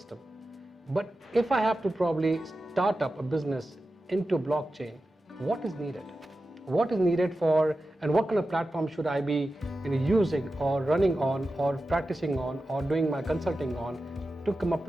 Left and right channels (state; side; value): normal; both; correlation 0.93